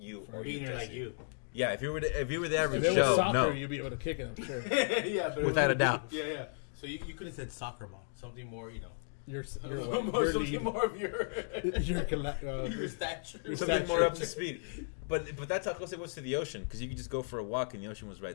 or you. like you. Yeah, if you were the average If it was Joe, soccer, no, you'd be able to kick it, I'm sure. Yeah, but without a doubt. Yeah. So you could have said soccer ball, something more, You're something more of your your stature. something more up to speed. But that's how close it was to the ocean, because you could just go for a walk and the ocean was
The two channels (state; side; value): silent; right; digital silence